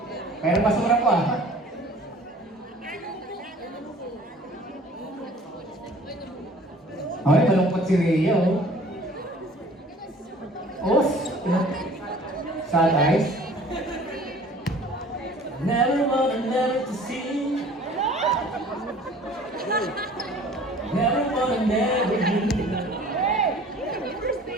Pero basura po Okay, malungkot si Rhea sad eyes. Never wanna never to see. Never wanna never leave.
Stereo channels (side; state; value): both; normal; correlation 0.49